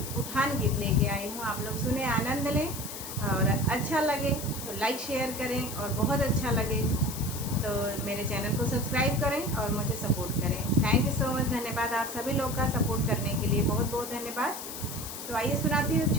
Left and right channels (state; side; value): noise; left; hiss, 9 dB below the sound